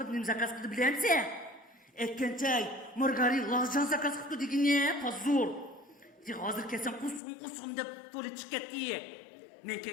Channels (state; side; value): drops out; right; at 7.2 s